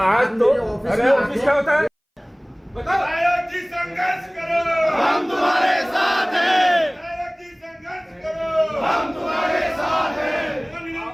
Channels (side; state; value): both; identical; correlation 1.00